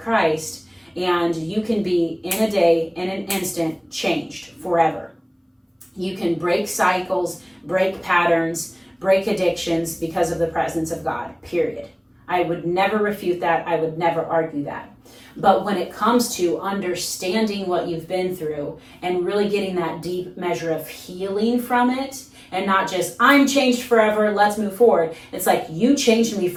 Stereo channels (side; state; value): both; identical; correlation 1.00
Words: and you can be in a day, in an instant, changed forever. You can break cycles, break patterns, break addictions because of the presence of God, period. I would never refute that. I would never argue that. But when it comes to understanding what you've been through and really getting that deep measure of healing from it, and not just, I'm changed forever, let's move forward. It's like, you changed me